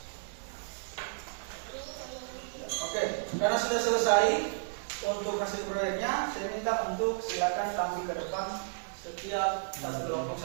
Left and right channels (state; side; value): silent; left; digital silence